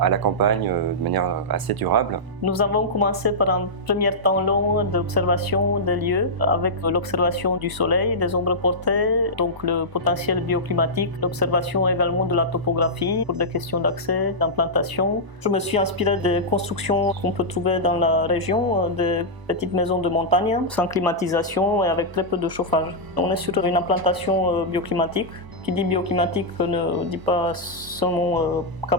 la campagne de manière assez durable. Nous avons commencé par un premier temps long d'observation des lieux, avec l'observation du soleil, des ombres portées, donc le potentiel bioclimatique, l'observation également de la topographie pour des questions d'accès, d'implantation. Je me suis inspiré des constructions qu'on peut trouver dans la région, des petites maisons de montagne, sans climatisation et avec très peu de chauffage. On est sur une implantation bioclimatique. Qui dit bioclimatique ne dit pas seulement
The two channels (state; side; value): late; left; 1.0 ms